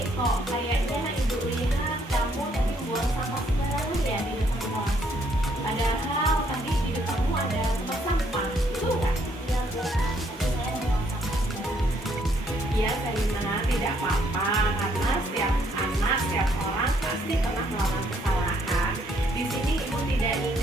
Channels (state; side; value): normal; both; correlation 0.69